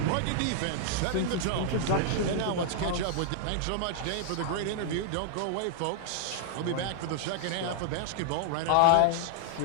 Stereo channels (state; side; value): different; both; correlation -0.01